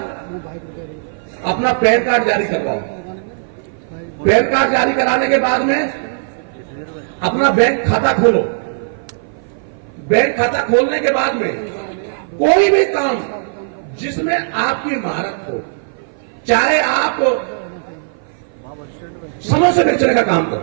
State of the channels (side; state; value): left; silent; 56 dB below the other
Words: अपना पैन कार्ड जारी करवाओ। पैन कार्ड जारी कराने के बाद में अपना बैंक खाता खोलो। बैंक खाता खोलने के बाद में कोई भी काम जिसमें आपकी महारत हो, चाहे आप समोसे बेचने का काम